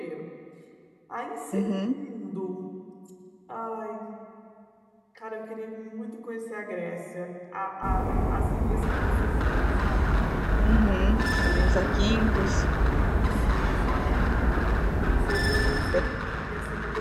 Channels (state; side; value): identical; both; correlation 1.00